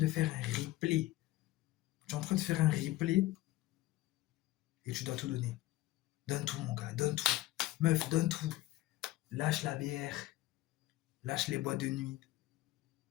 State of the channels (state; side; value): quieter; right; 17.0 dB